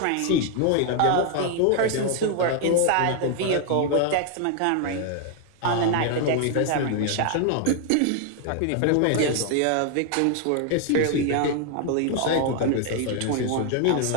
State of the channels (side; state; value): both; different; correlation 0.00